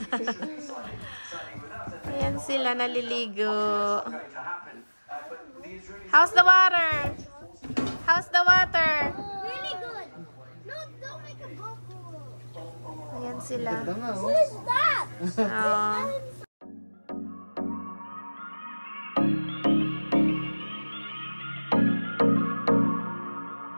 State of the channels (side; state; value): both; inverted; correlation -1.00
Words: Ayan sila, naliligo. How's the water? How's the water? Really good. No, don't make a bubble. Ayan sila. What is that? Oh.